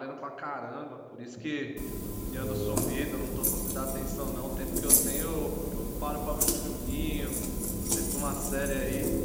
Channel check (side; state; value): both; identical; correlation 1.00